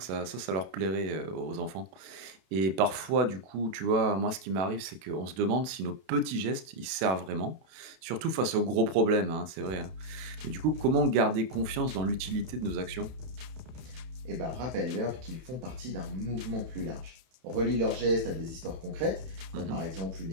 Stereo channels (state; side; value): late; left; 32 ms